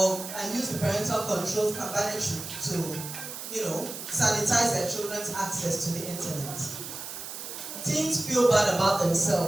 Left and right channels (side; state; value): right; noise; hiss, 9 dB below the sound